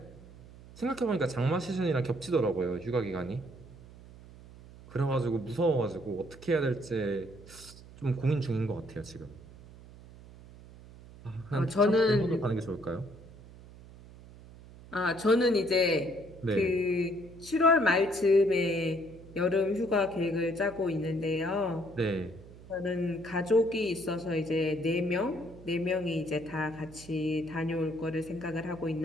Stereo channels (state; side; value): noise; right; hum, 19 dB below the sound